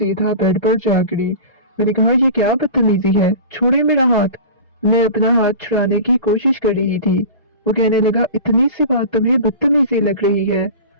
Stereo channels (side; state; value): both; inverted; correlation -0.34